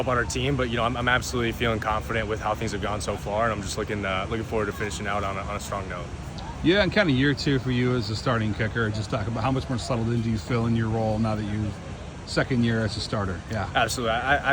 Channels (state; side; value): identical; both; correlation 1.00